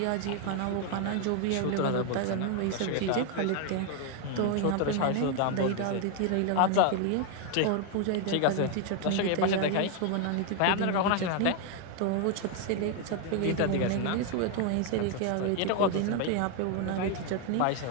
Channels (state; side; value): different; both; correlation 0.01